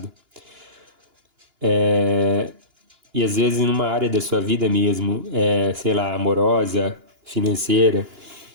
E às vezes numa área da sua vida mesmo, sei lá, amorosa, financeira,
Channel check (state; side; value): late; left; 2.9 ms